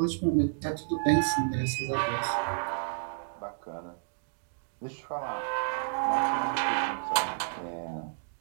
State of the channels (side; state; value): left; silent; digital silence